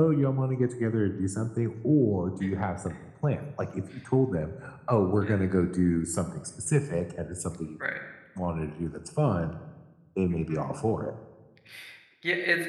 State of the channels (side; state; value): both; identical; correlation 1.00